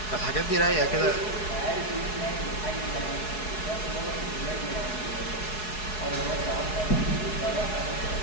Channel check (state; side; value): late; right; 4.7 ms